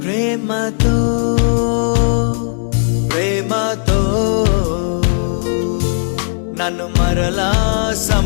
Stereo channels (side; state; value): right; silent; digital silence